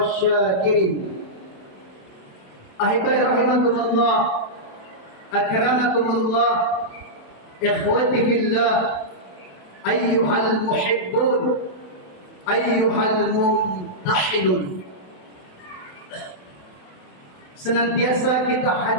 أحبائي رحمكم الله، أكرمكم الله، إخوتي في الله، أيها المحبون، أيها الممتحنون. Senantiasa kita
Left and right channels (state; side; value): late; right; 27 ms